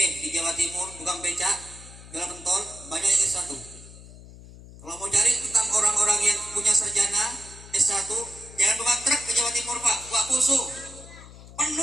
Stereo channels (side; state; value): left; noise; hum, 18 dB below the sound